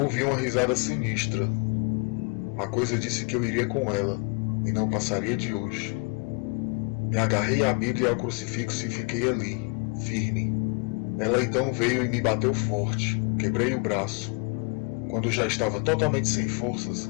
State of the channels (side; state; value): right; quieter; 33.1 dB